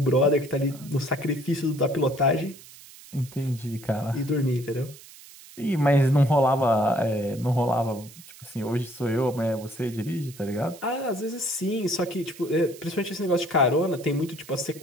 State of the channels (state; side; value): noise; right; hiss, 20 dB below the sound